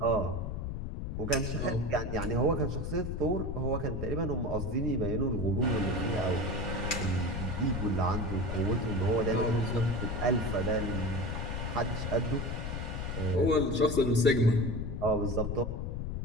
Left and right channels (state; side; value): noise; left; rumble, 3 dB below the sound